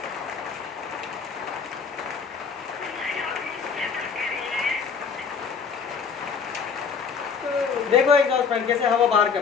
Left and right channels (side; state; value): right; quieter; 6.0 dB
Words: देखो एक और फ्रेंड कैसे हवा बाहर